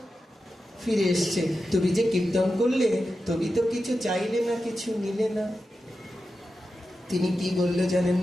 ফিরে এসছে, তুমি যে কীর্তন করলে, তুমি তো কিছু চাইলে না, কিছু নিলে না। তিনি কি বললো জানেন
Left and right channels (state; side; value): normal; both; correlation 0.91